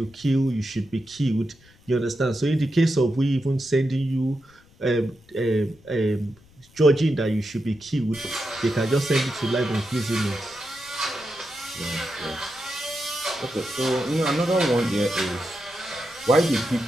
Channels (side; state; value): left; noise; rumble, 28 dB below the sound